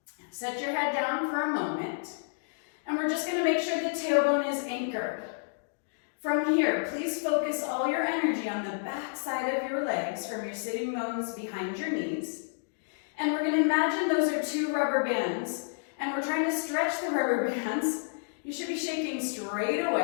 Set your head down for a moment. And we're just going to make sure the tailbone is anchored. From here, please focus all your energy on the back side of your legs from your sitting bones behind your knees. And we're going to imagine those are 2 rubber bands. And we're trying to stretch the rubber bands. You should be shaking straight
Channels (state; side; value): silent; right; digital silence